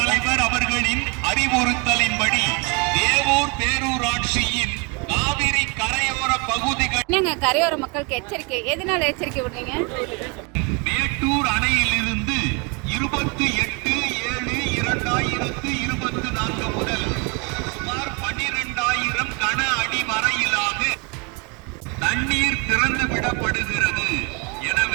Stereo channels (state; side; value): quieter; left; 30.8 dB